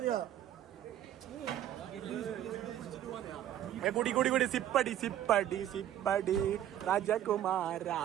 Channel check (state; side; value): quieter; left; 11.6 dB